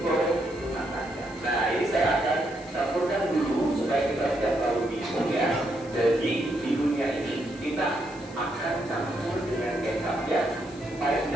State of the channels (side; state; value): left; noise; hiss, 22 dB below the sound